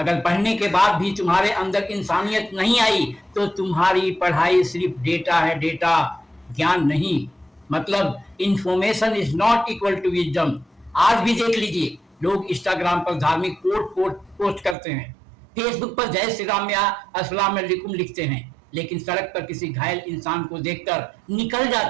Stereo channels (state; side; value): drops out; left; at 14.8 s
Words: पढ़ने के बाद भी तुम्हारे अंदर इंसानियत नहीं आई तो तुम्हारी पढ़ाई सिर्फ डेटा है, डेटा, ज्ञान नहीं। मतलब information is not equal to wisdom. आज भी देख लीजिए, लोग इंस्टाग्राम पर धार्मिक कोट पोस्ट करते हैं, फेसबुक पर जय श्री राम या अस्सलाम वालेकुम लिखते हैं, लेकिन सड़क पर किसी घायल इंसान को देखकर निकल